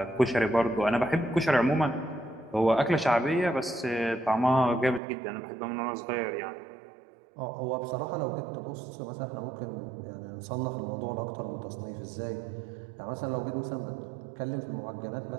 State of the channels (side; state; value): left; drops out; at 5.0 s